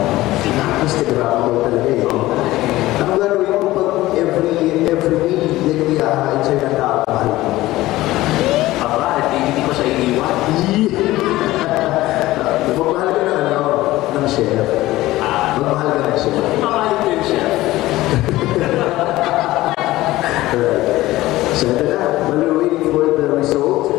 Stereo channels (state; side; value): quieter; right; 17.2 dB